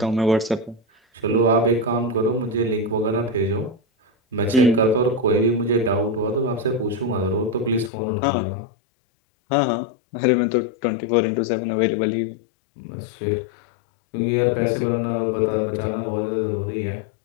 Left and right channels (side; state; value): right; drops out; at 7.9 s